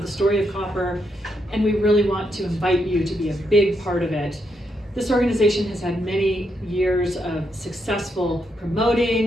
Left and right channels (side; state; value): both; normal; correlation 0.80